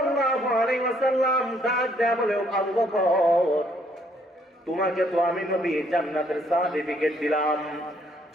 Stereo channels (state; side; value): normal; both; correlation 0.67